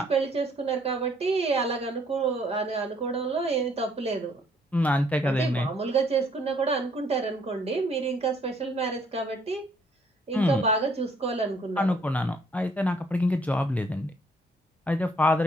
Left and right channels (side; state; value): both; normal; correlation 0.64